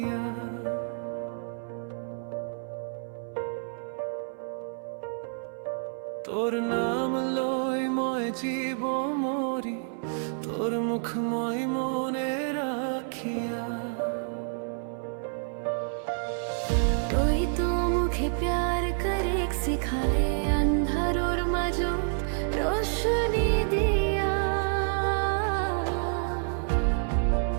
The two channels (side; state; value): left; silent; 59 dB below the other